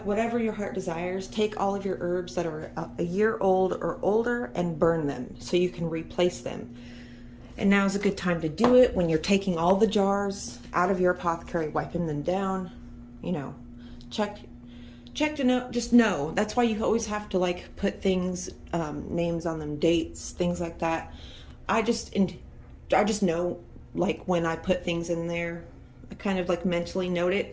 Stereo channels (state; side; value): identical; both; correlation 1.00